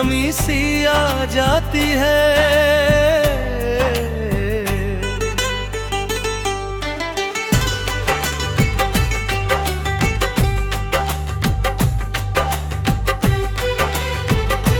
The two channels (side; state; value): both; identical; correlation 1.00